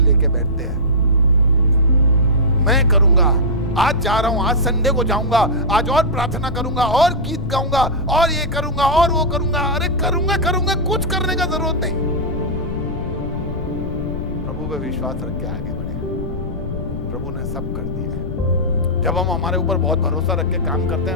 बैठते हैं। मैं करूंगा, आज जा रहा हूं, आज संडे को जाऊंगा, आज और प्रार्थना करूंगा, और गीत गाऊंगा, और ये करूंगा और वो करूंगा। अरे करूंगा, कुछ करने का जरूरत नहीं। प्रभु पे विश्वास रख के आगे बढ़े, प्रभु ने सब कर दिया है। जब हम हमारे ऊपर बहुत भरोसा रख के काम करते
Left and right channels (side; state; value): left; noise; rumble, 7 dB below the sound